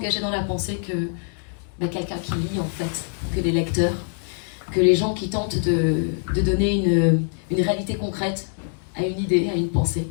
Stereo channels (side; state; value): right; silent; 63 dB below the other